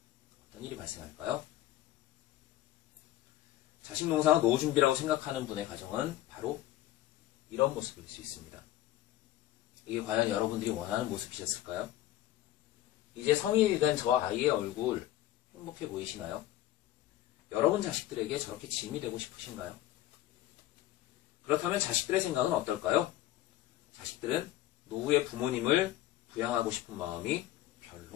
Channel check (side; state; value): right; quieter; 14.3 dB